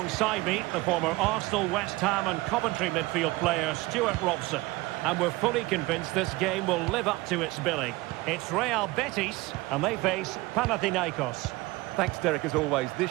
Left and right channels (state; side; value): quieter; left; 20.8 dB